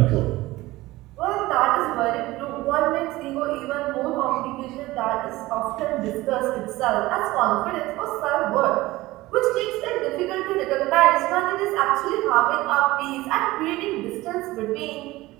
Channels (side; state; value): left; quieter; 18.7 dB